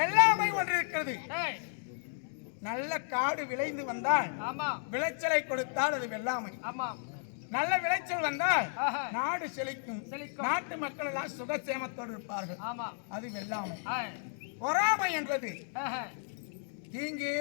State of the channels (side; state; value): right; silent; digital silence